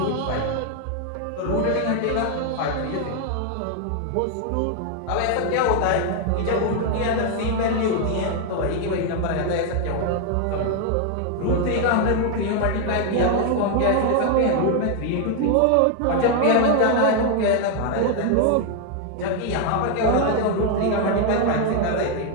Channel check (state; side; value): different; both; correlation 0.00